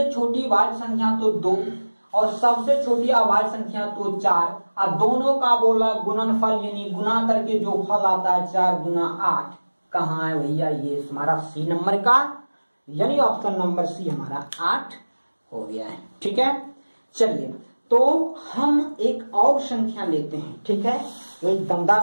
छोटी भाज्य संख्या तो 2 और सबसे छोटी अभाज्य संख्या तो 4, और दोनों का बोला गुणनफल यानी गुना करके जो फल आता है 4 गुना 8, कहाँ है भैया, ये हमारा सी नंबर का, यानी ऑप्शन नंबर सी हमारा 8 हो गया है। ठीक है, चलिए तो हम एक और संख्या लेते हैं। ठीक है, एक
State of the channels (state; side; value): inverted; both; correlation -1.00